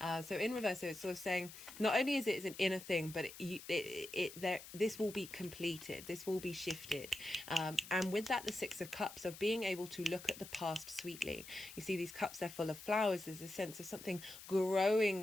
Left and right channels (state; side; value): noise; left; hiss, 14 dB below the sound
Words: So in reverse, so it's sort of saying not only is it an inner thing, but this will be completed, this will be shifted. And with that, the Six of Cups, of being able to look at the past sweetly. You see these cups, they're full of flowers. There's a sense of something